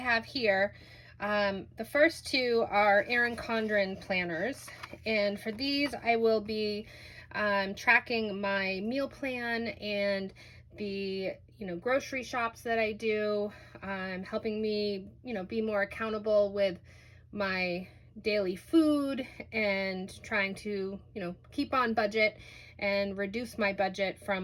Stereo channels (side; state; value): both; identical; correlation 1.00